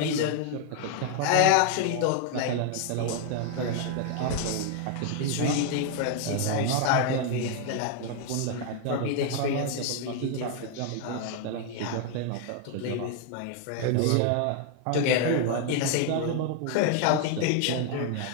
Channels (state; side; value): different; both; correlation 0.00